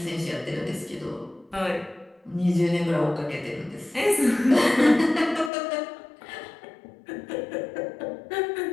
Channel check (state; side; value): drops out; right; at 5.5 s